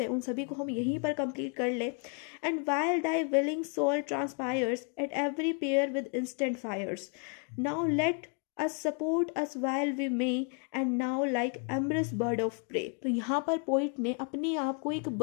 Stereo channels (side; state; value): right; quieter; 39.5 dB